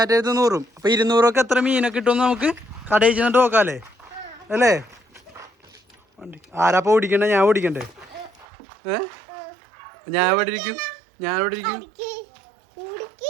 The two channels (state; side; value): drops out; left; at 8.5 s